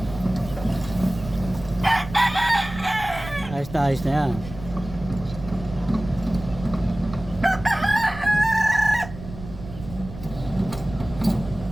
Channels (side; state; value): right; noise; rumble, 13 dB below the sound